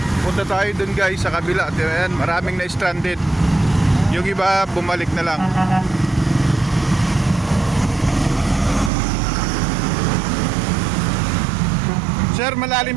Punta tayo dun guys sa kabila. Ayan, maraming na-stranded. Yung iba bumalik na lang. Sir,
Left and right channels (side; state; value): left; drops out; at 8.9 s